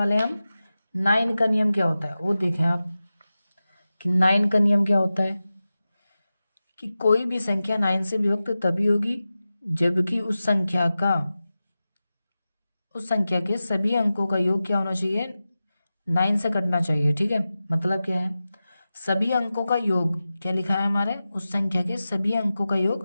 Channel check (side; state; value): both; inverted; correlation -0.94